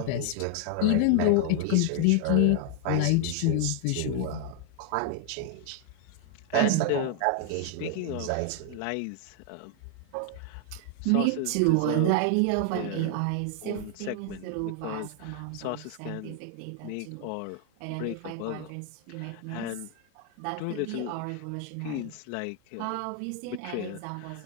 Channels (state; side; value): different; both; correlation 0.00